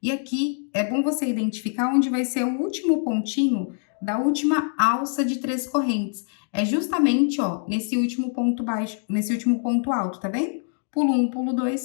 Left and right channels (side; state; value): right; silent; 56 dB below the other